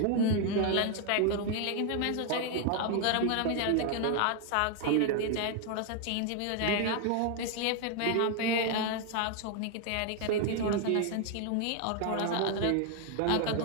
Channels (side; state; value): both; different; correlation 0.00